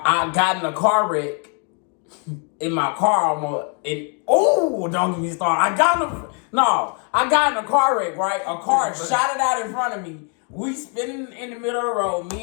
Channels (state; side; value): quieter; right; 39.7 dB